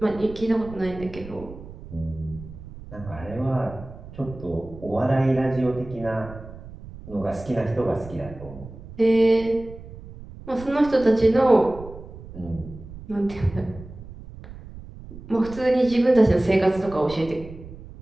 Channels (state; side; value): noise; right; rumble, 15 dB below the sound